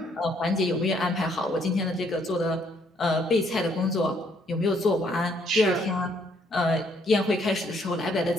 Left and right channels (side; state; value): both; normal; correlation 0.68